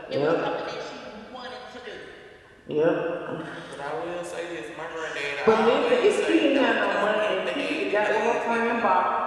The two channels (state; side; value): identical; both; correlation 1.00